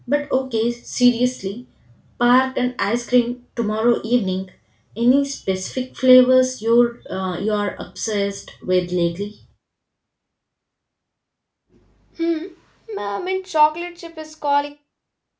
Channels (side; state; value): both; identical; correlation 1.00